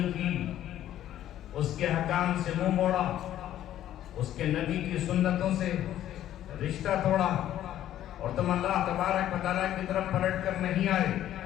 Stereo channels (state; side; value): quieter; right; 12.2 dB